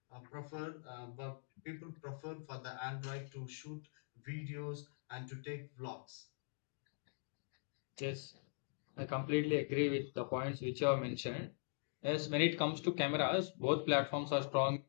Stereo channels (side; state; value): right; silent; digital silence